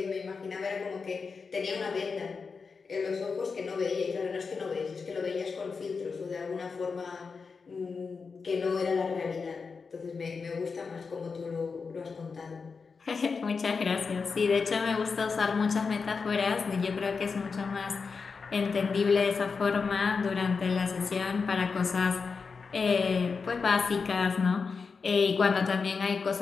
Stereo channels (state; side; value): quieter; right; 5.0 dB